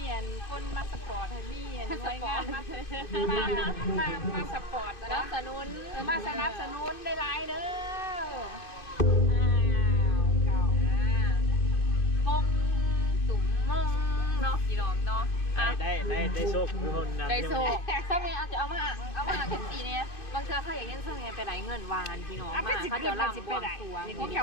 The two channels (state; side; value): late; right; 2.6 ms